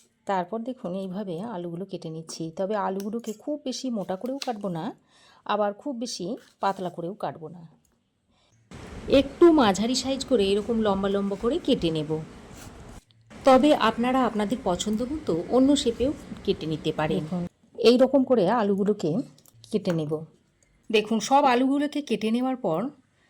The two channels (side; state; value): both; identical; correlation 1.00